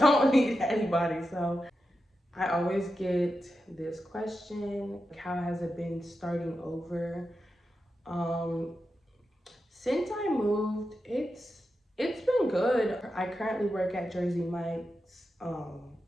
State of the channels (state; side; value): normal; both; correlation 0.89